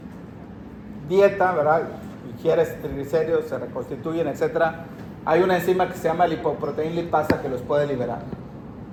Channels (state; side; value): identical; both; correlation 1.00